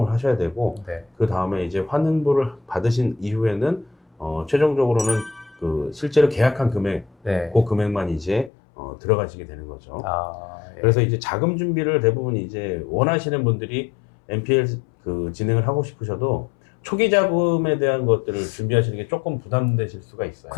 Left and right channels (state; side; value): drops out; right; at 8.5 s